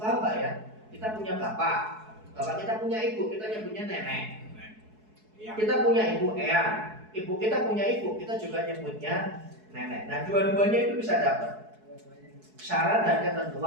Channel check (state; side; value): late; left; 4.7 ms